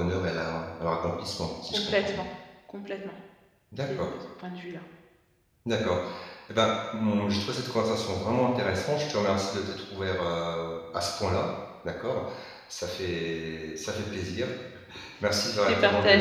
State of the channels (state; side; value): identical; both; correlation 1.00